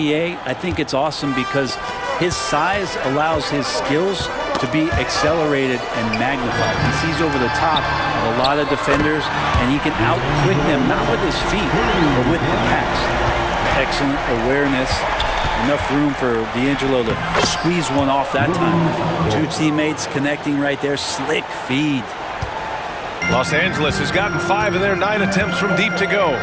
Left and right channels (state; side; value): identical; both; correlation 1.00